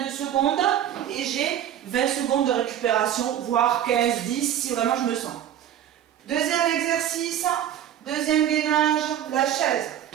de secondes, et j'ai 20 secondes de récupération, voire 15, 10, si vraiment je me sens. Deuxième exercice, deuxième gainage, la chaise.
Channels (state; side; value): quieter; left; 10.6 dB